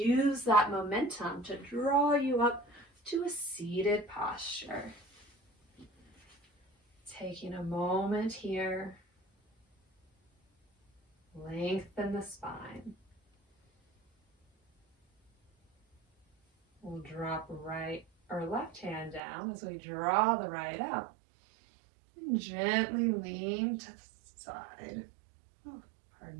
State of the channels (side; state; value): left; drops out; at 19.2 s